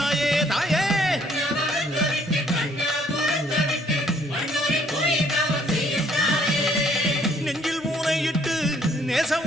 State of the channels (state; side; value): normal; both; correlation 0.64